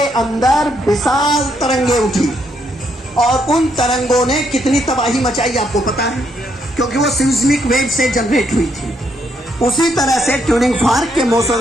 अंदर विशाल तरंगे उठी और उन तरंगों ने कितनी तबाही मचाई आपको पता है, क्योंकि वो सिस्मिक वेव से जनरेट हुई थी। उसी तरह से ट्यूनिंग फॉर्क के मोशन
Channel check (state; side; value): normal; both; correlation 0.75